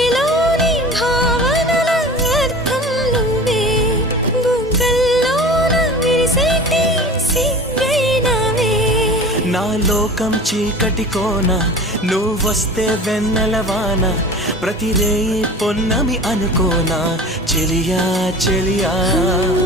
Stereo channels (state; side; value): normal; both; correlation 0.38